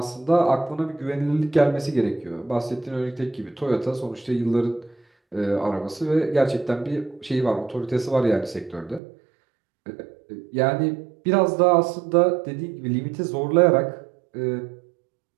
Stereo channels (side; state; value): left; drops out; at 9.0 s